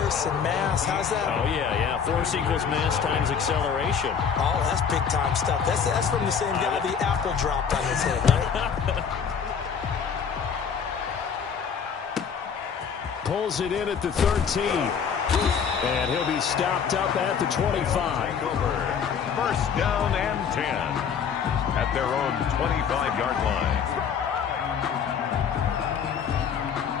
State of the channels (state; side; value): quieter; right; 6.9 dB